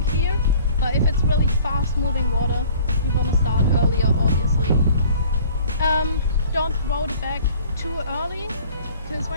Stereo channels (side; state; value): both; inverted; correlation -0.51